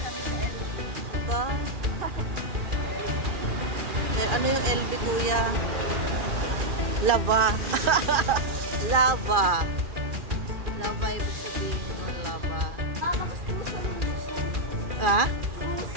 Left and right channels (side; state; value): left; late; 2.4 ms